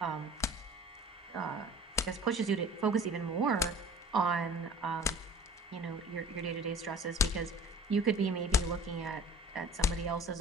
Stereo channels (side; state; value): both; normal; correlation 0.44